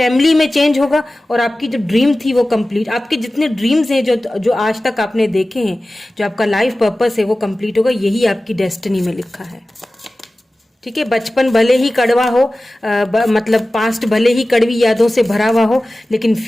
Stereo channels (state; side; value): normal; both; correlation 0.96